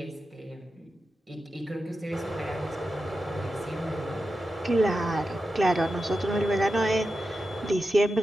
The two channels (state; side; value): normal; both; correlation 0.91